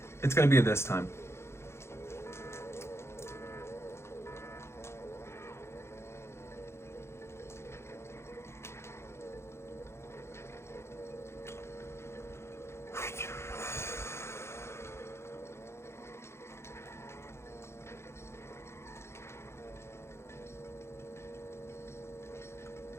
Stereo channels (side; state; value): right; late; 0.13 ms